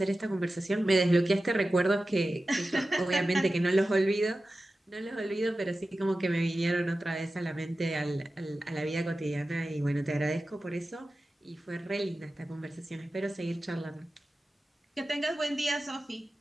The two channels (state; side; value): normal; both; correlation 0.94